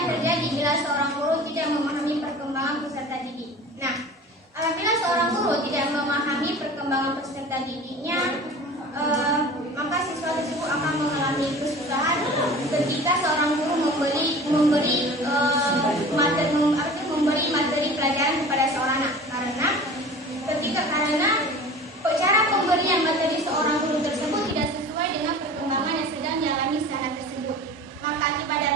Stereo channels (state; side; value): normal; both; correlation 0.40